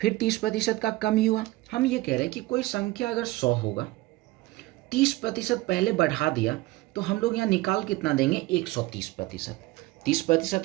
फिर 30% का कमी हुआ। हम ये कह रहे हैं कि कोई संख्या अगर 100 होगा, 30% पहले बढ़ा दिया तो हम लोग यहाँ निकाल कितना देंगे, 130%।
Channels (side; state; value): left; quieter; 19.4 dB